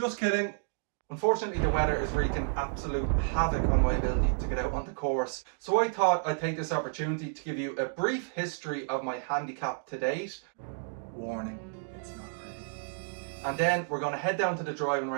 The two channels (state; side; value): silent; left; digital silence